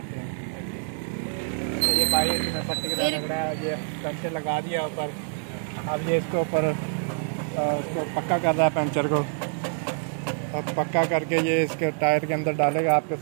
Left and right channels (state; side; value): silent; left; 61 dB below the other